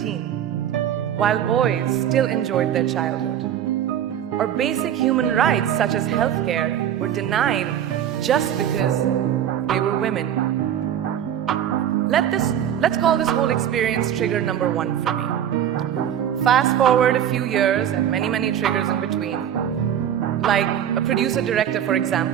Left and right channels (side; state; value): left; quieter; 10.1 dB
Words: while boys still enjoyed their childhood. Or basic human rights such as healthcare were denied just because they were women. Let's call this whole experience trigger number 1 for me. Fast forward a few years and many, many triggers in between. Like a producer-director, for